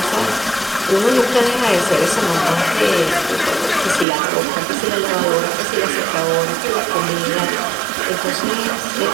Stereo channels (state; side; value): drops out; left; at 4.0 s